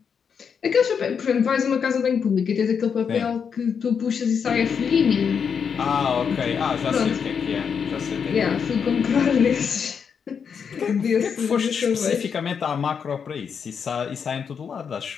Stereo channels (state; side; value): quieter; right; 6.7 dB